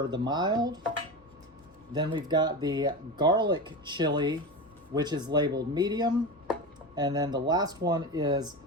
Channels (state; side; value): noise; left; rumble, 30 dB below the sound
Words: the mild. Then we've got the garlic chili, which is labeled medium. And then the last one is